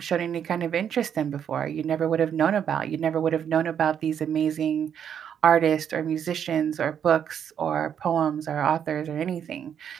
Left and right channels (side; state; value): left; quieter; 8.5 dB